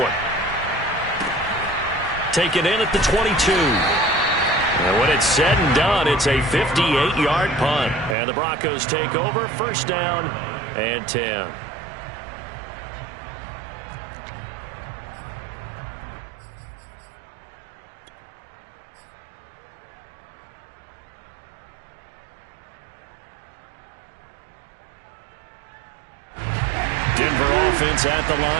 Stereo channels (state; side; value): drops out; left; at 8.2 s